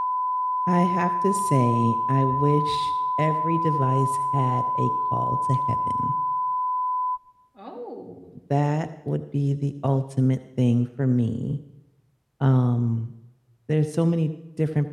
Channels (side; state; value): both; identical; correlation 1.00